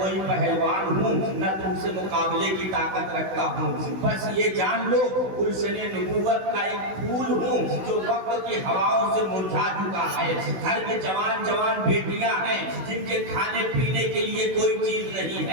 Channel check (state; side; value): late; left; 16 ms